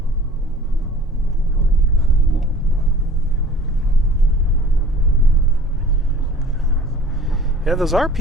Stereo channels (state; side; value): normal; both; correlation 0.47